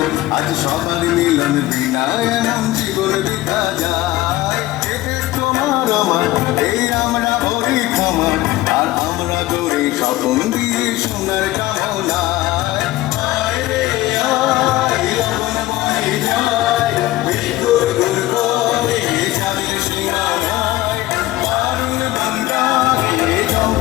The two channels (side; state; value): right; quieter; 17.0 dB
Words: আজ সবার মিলন বিনা এমন জীবন বিধা যায় এতে তোমার আমার এই আমরা ভরি ক্ষমা আর আমরা দৌড়ে স্বপন দিয়ে সোনার কামনায় আয় রে আয় লগন বয়ে যায় বিদ্যুৎ গুল করে যাবে সীমানায় মারুন গঙ্গাকে